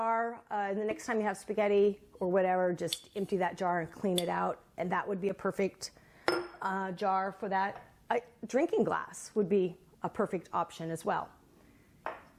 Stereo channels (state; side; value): identical; both; correlation 1.00